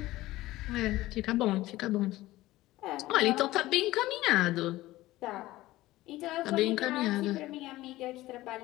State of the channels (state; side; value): quieter; right; 17.2 dB